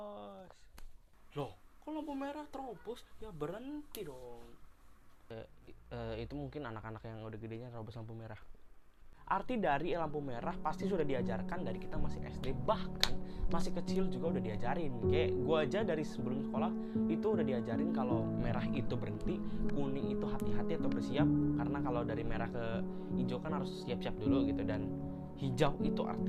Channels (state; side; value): identical; both; correlation 1.00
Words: Loh, kok lampu merah terobos? Ya berhenti dong. Itu mungkin anak-anak yang udah gedenya terobos lampu merah. Arti dari lampu merah pasti sudah diajarkan dari kita masih SD, bahkan masih kecil juga udah diajarin. Kayak gua aja dari sebelum sekolah itu udah diajarin kalau merah itu berhenti, kuning itu hati-hati atau bersiap, karena kalau dari merah ke hijau kan harus siap-siap dulu gitu, dan hijau itu